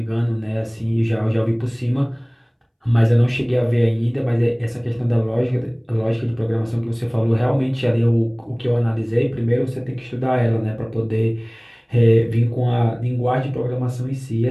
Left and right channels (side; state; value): both; identical; correlation 1.00